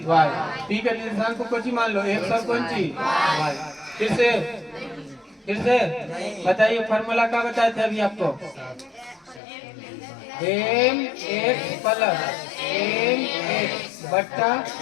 Y, P का निर्देशांक को कौन सी मान लो X और कौन सी Y। फिर से बताइए, फॉर्मूला क्या बताए थे अभी आपको, mx प्लस mx बट्टा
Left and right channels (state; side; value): drops out; right; at 9.4 s